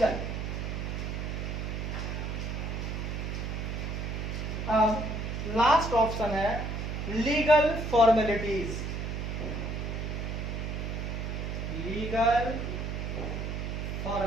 अब लास्ट ऑप्शन है लीगल फॉर्मेलिटीज। लीगल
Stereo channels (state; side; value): noise; right; hum, 3 dB below the sound